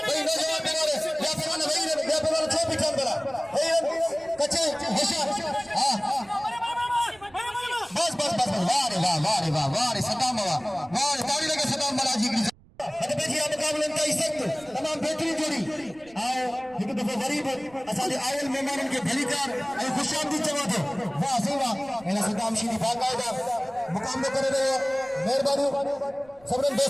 भाई नौजवान पहलवान या पहलवान छो पिछाड़ बड़ा भाई कच्चे होशियार हां बस वाह रे सदाम वाह ताली लगे सदाम बालाजी की अरे बेजी मुकाबले का इज्जत तमाम बेहतरीन जोड़ी आओ एक दफा गरीब असादे आयल मेहमानन के भलीकार और खुशामदी चवा दो वाह सही वाह एना सदाम शीदी बाकायदा मुकाबलो करे रहे मेहरबानी सबरन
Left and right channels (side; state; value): right; noise; rumble, 26 dB below the sound